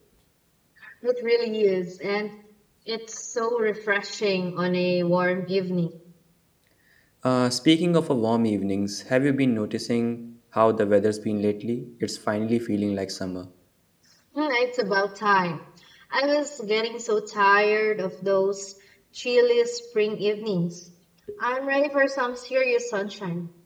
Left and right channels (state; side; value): identical; both; correlation 1.00